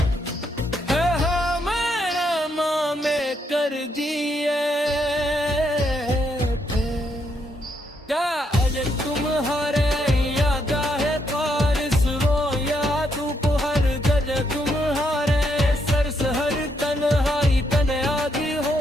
कर दिए थे। क्या आज तुम्हारे याद है, बारिश रो या धूप, हर जगह तुम्हारे सर से हर तन्हाई तन्हाई हो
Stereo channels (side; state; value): both; normal; correlation 0.77